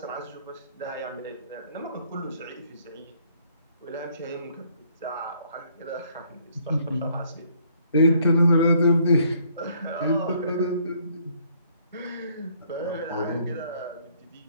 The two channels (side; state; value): both; inverted; correlation -0.65